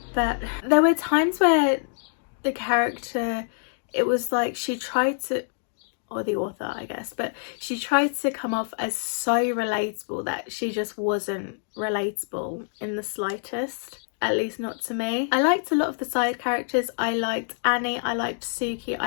but there were times where the character, it was like she tried to, or the author I guess, but she tried to come off as so relatable that she just wasn't relatable in the slightest, at least not to me. I liked a lot of the side characters. I liked Annie, I liked Suki,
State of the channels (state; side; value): silent; right; digital silence